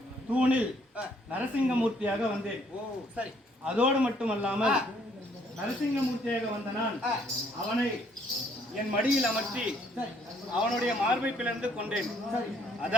தூணில் நரசிங்கமூர்த்தியாக வந்தேன். அதோடு மட்டுமல்லாமல் நரசிங்கமூர்த்தியாக வந்த நான் அவனை என் மடியில் அமர்த்தி அவனுடைய மார்பை பிளந்து கொண்டேன்.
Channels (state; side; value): normal; both; correlation 0.65